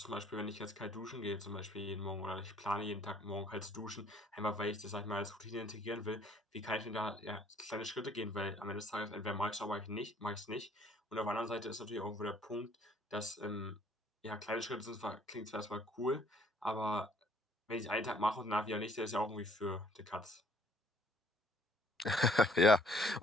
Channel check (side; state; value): both; normal; correlation 0.60